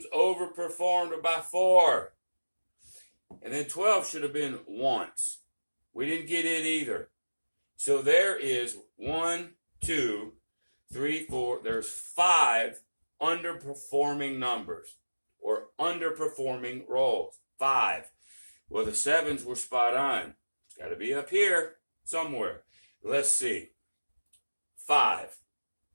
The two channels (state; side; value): inverted; both; correlation -1.00